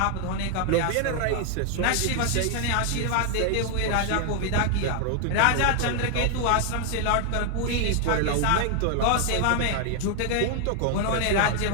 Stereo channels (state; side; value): different; both; correlation 0.00